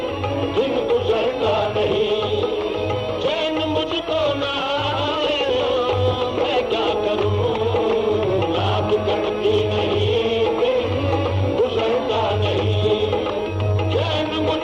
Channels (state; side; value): identical; both; correlation 1.00